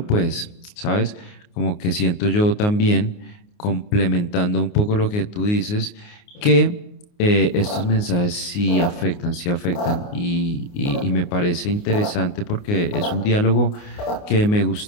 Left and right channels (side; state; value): right; late; 29 ms